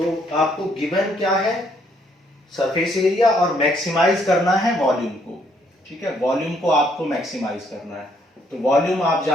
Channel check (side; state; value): both; normal; correlation 0.68